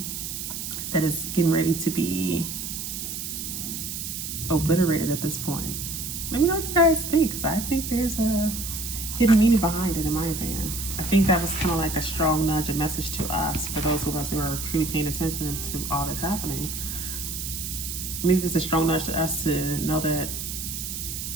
that is getting ready to be obliterated at this point? Let me know what you guys think, because I think there's a hidden meaning behind it, in my opinion. I think that was kind of like a strong nudge, a message to us, for those of us who are truly paying attention to all that's happening. Maybe it's a strong nudge to us to know that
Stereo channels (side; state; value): right; noise; hiss, 6 dB below the sound